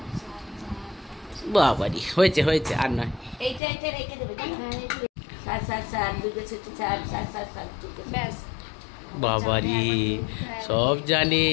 বাবারি হয়েছে হয়েছে, আর নয়। এইটা রেখে দেবে। 60 দুর্গা ষষ্ঠী 60 ব্যাস। বাবারি সব জানে।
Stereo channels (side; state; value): right; drops out; at 3.6 s